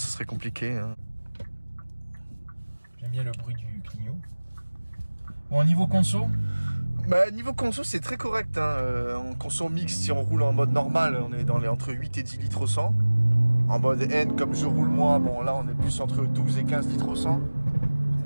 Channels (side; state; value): both; inverted; correlation -1.00